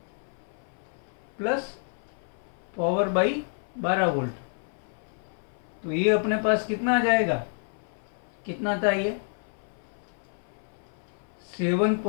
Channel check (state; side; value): silent; right; 56 dB below the other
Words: plus power by 12 volt. तो ये अपने पास कितना आ जाएगा, कितना था ये